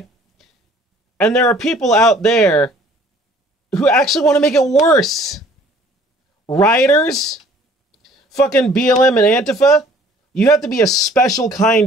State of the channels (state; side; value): normal; both; correlation 0.55